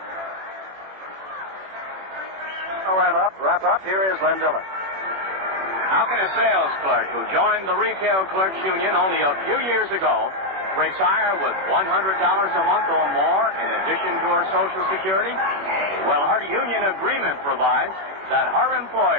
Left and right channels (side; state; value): left; late; 21 ms